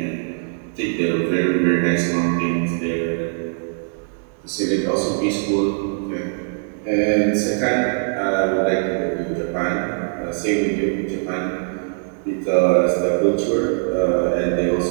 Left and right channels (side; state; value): left; silent; 65 dB below the other